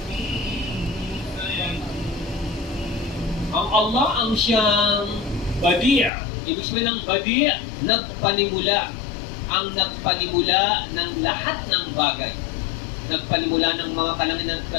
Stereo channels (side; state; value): right; drops out; at 6.1 s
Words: Ang Allah ang siyang Badi'. Ibig sabihin ng Badi', nagpanimula. Ang nagpanimula ng lahat ng bagay. Nagpanimula ng mga kalangitan at